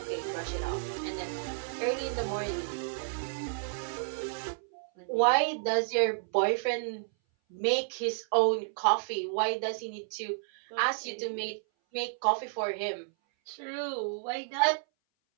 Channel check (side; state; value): left; silent; 57 dB below the other